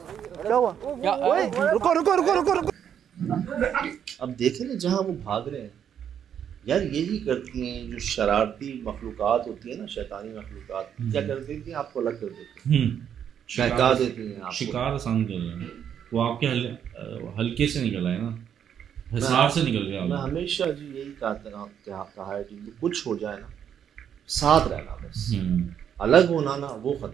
क्या हुआ? रुको। अब देखें ना जहाँ वो भाग रहे हैं यार, यही करती हैं जो शरारती मखलूकात होती है ना, शैतानी मखलूकात। क्या कर देती हैं? आपको अलग कर देती हैं, बहका देती हैं, शिकार आसान कर रहे हैं। वो आपके हल्के से निकला है ना, हिसार से निकल गया। मैं हमेशा जी यही कहा है कि कुछ हो जाए ना, साथ रहना बस, अलग होना ना वो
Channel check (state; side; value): quieter; left; 8.8 dB